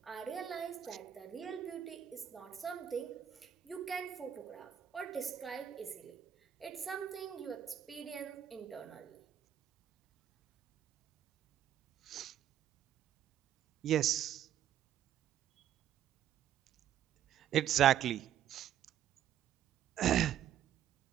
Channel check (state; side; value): quieter; left; 10.3 dB